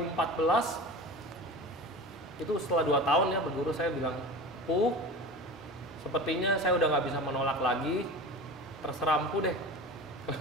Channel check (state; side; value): normal; both; correlation 0.32